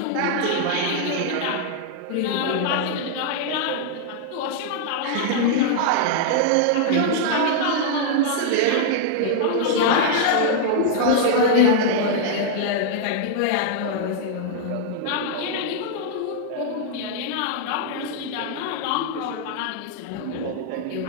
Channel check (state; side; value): different; both; correlation 0.00